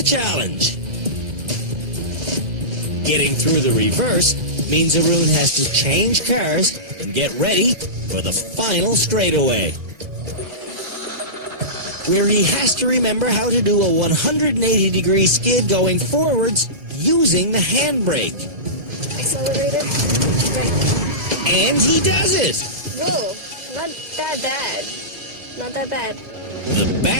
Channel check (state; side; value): late; left; 2.0 ms